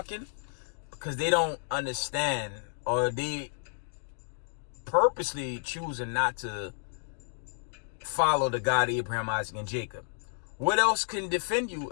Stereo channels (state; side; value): silent; right; digital silence